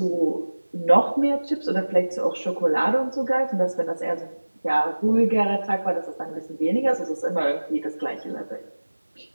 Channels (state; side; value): inverted; both; correlation -1.00